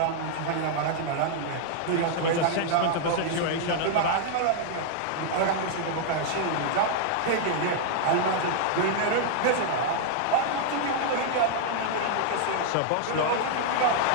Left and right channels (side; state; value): both; different; correlation -0.01